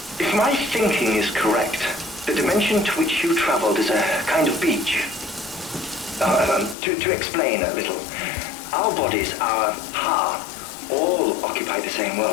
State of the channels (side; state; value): right; drops out; at 6.8 s